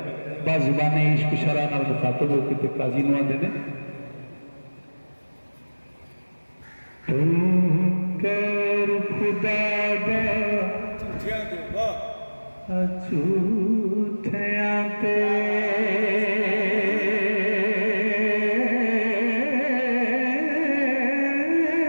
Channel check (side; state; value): both; inverted; correlation -1.00